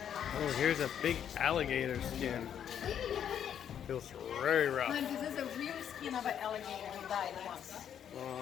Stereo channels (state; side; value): quieter; right; 9.1 dB